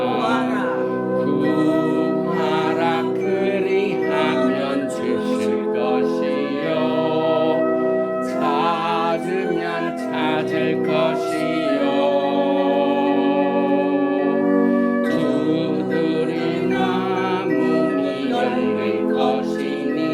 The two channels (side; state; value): both; identical; correlation 1.00